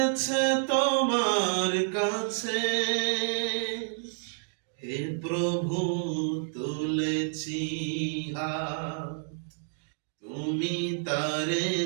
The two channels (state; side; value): silent; left; digital silence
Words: তোমার কাছে। হে প্রভু তুলেছি হাত, তুমি তারে